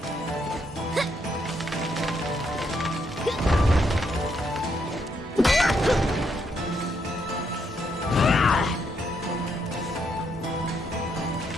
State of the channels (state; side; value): normal; both; correlation 0.76